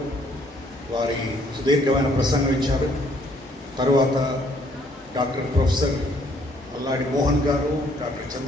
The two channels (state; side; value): normal; both; correlation 0.65